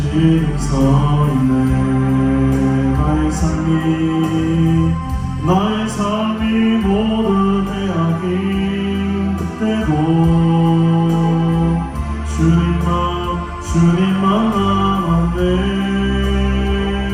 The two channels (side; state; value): both; identical; correlation 1.00